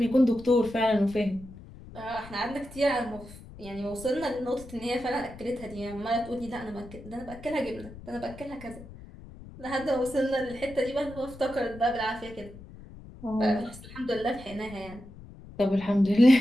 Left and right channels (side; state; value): left; noise; rumble, 17 dB below the sound